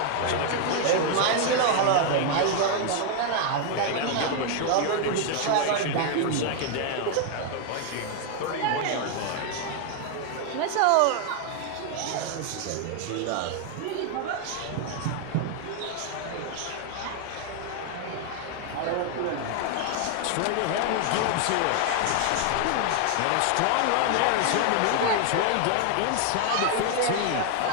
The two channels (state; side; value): different; both; correlation 0.00